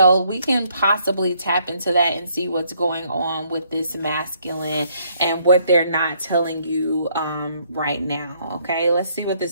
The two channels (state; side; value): inverted; both; correlation -0.68